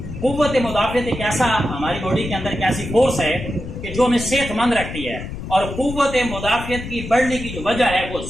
कुव्वत मुदाफियत एक ऐसा हमारी बॉडी के अंदर एक ऐसी फोर्स है कि जो हमें सेहतमंद रखती है। और कुव्वत मुदाफियत की बढ़ने की जो वजह है वो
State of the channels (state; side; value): noise; left; rumble, 9 dB below the sound